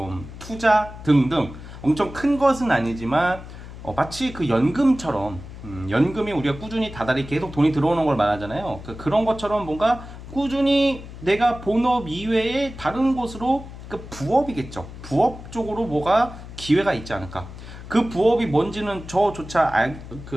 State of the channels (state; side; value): noise; left; hum, 13 dB below the sound